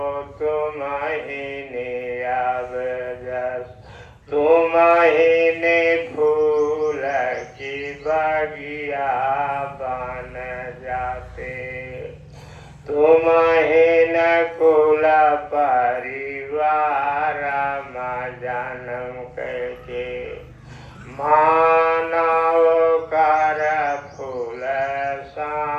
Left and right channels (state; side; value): identical; both; correlation 1.00